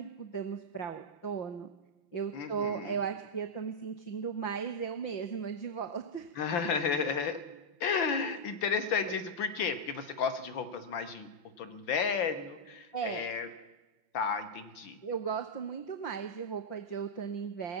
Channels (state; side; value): late; right; 5.9 ms